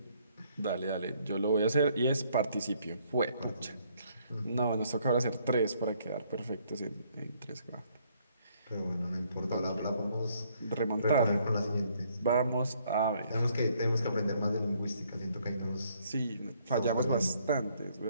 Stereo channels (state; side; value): inverted; both; correlation -0.67